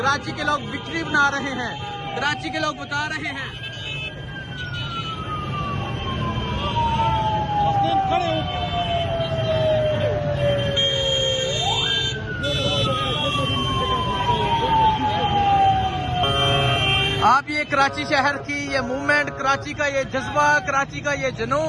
के लोग विक्ट्री बना रहे हैं, कराची के लोग बता रहे हैं। आप ये कराची शहर की ये मूवमेंट, कराची का ये जज्बा, कराची का ये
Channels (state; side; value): identical; both; correlation 1.00